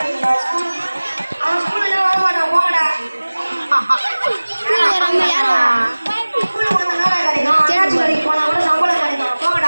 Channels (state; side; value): inverted; both; correlation -1.00